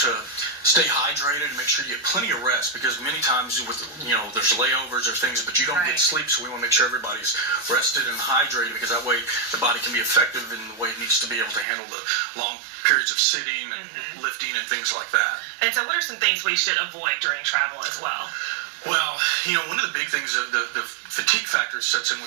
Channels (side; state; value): left; drops out; at 11.7 s